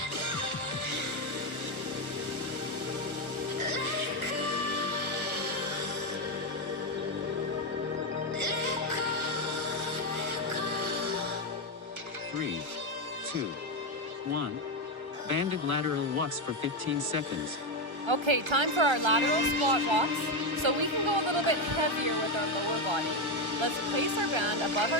Three, two, one. Banded lateral walks for 15 seconds. Okay, time for our lateral squat walks. So we can go a little bit heavier with our lower body. Let's place our band above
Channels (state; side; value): late; left; 1.3 ms